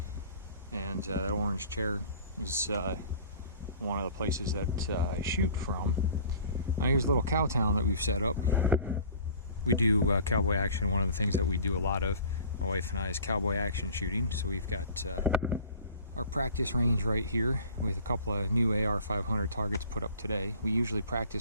And that orange chair is one of the places that I shoot from. Now here's a little cow town that we've set up. We do cowboy action. One of the things that we do a lot of, my wife and I, is cowboy action shooting. So we've got our practice range right here with a couple of new AR-500 targets put up today. We usually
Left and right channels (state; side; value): inverted; both; correlation -0.46